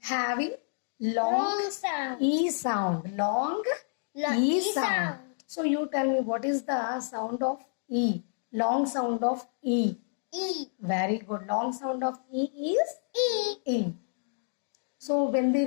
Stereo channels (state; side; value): silent; right; digital silence